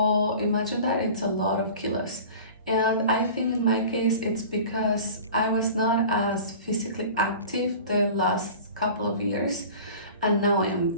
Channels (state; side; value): inverted; both; correlation -0.40